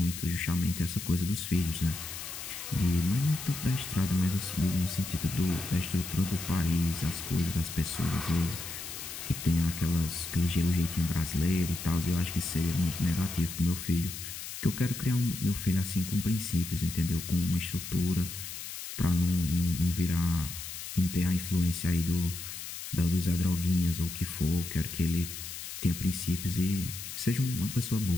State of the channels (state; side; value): noise; left; hiss, 9 dB below the sound